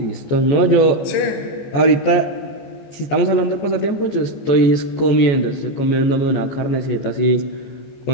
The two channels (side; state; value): right; late; 14 ms